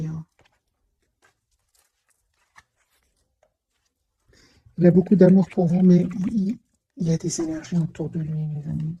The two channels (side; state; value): both; identical; correlation 1.00